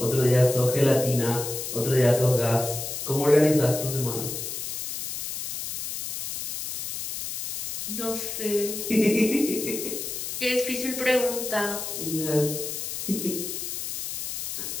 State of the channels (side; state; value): left; noise; hiss, 5 dB below the sound